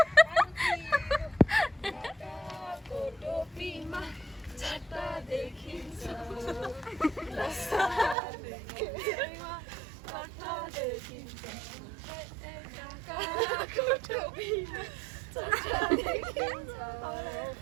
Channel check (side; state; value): left; drops out; at 8.2 s